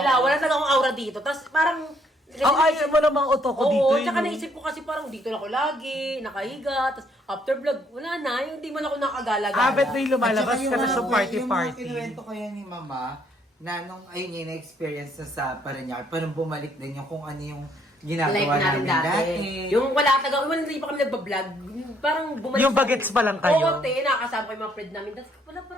talaga akong aura dito. Tapos parang... Ang ayaw mo namang otoko dito. Oo, tsaka no? naisip ko kasi parang dito na ako lagi, nakahiga, tapos after vlog, wala na, yung hindi man ako nakagala-gala. Habit na yung lumalabas At saka ka na sa yung mga party-party. kinuwento ko yan ni Mama, na nung ayun yung na-experience na sa Parañaque, parang bumalik din yung kung ano yung ginagawa Life natin namin dati. dati. Yung wala taga, hindi pa kami nagbablog, parang bumalik. Yung bagets pa lang kayo. Oo, te, nakakasama ko yung mga friend namin. Tapos wala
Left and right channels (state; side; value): normal; both; correlation 0.68